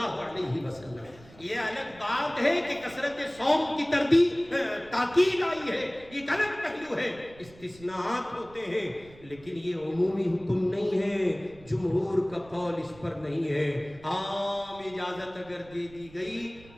علیہ وسلم۔ یہ الگ بات ہے کہ کثرت صوم کی تاکید آئی ہے، ایک الگ پہلو ہے، استثناءات ہوتے ہیں، لیکن یہ عمومی حکم نہیں ہے، جمہور کا قول اس پر نہیں ہے۔ عام اجازت اگر دے دی گئی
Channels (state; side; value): noise; right; rumble, 22 dB below the sound